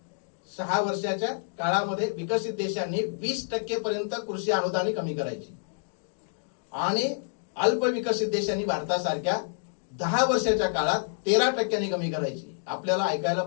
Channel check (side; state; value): right; silent; digital silence